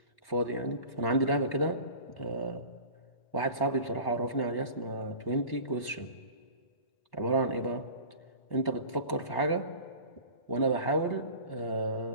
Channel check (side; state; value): right; late; 1.1 ms